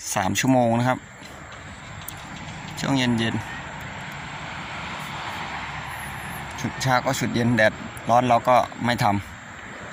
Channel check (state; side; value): identical; both; correlation 1.00